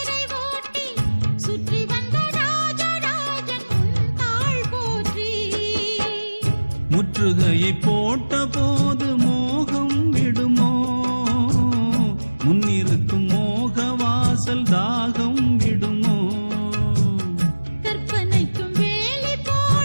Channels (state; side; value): inverted; both; correlation -1.00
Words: ஓட்டி சுற்றி வந்த ராஜராஜன் உன் தாள் போற்றி முற்றுகையை போட்ட போது மோகம் விடுமோ முன்னிருக்கும் மோக வாசல் தாகம் விடுமோ கற்பனைக்கும் வேலி